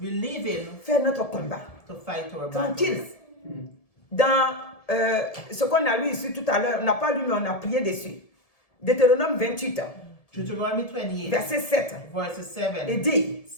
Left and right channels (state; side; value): late; right; 1.7 ms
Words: leave Him faire notre combat. to fight our Tranquille. battles. Dans ce qu'on a lu ici tout à l'heure, on n'a pas lu mais on a prié dessus. Deutéronome 28, Deuteronomy 28, verset 7, verse 7 et dit,